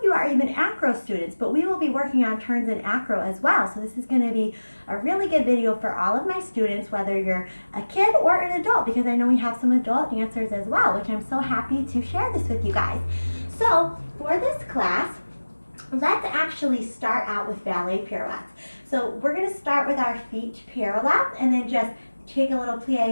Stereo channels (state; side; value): inverted; both; correlation -1.00